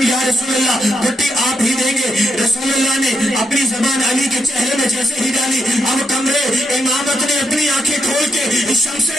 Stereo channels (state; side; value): normal; both; correlation 0.80